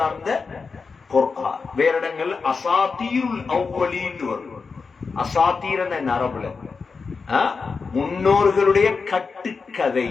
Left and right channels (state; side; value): quieter; right; 4.8 dB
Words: இந்த குர்ஆன். வேற இடங்கள் அசாத்தீருல் அவ்வலீன் வரும். அசாத்தீரன அரபுல முன்னோர்களுடைய கட்டுக்கதை.